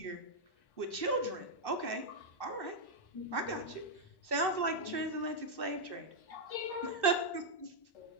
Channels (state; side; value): late; right; 1.1 ms